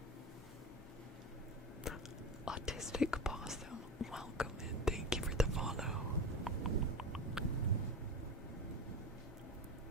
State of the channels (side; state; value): both; normal; correlation 0.25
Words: Autistic Possum, welcome and thank you for the follow.